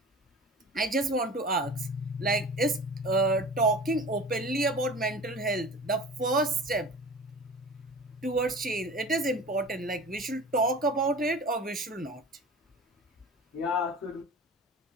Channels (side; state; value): both; normal; correlation 0.38